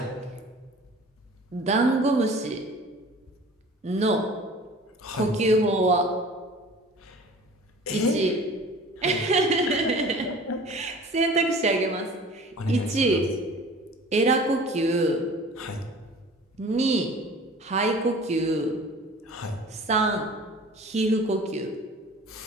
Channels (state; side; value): normal; both; correlation 0.44